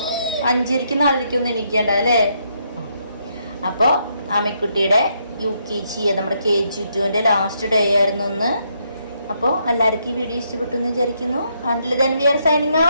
5:30 4:30 എണീക്കേണ്ട അല്ലേ. അപ്പോൾ അമ്മിക്കുട്ടിയുടെ UKG നമ്മുടെ KG2 ലാസ്റ്റ് ഡേ ആയിരുന്നു ഇന്ന്. അപ്പോൾ എല്ലാവർക്കും ഈ വീഡിയോ ഇഷ്ടപ്പെട്ടു എന്ന് വിചാരിക്കുന്നു. Until then we are signing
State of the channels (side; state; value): both; inverted; correlation -0.75